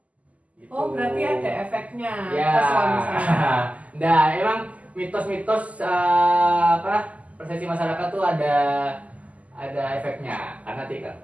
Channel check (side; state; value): left; late; 0.071 ms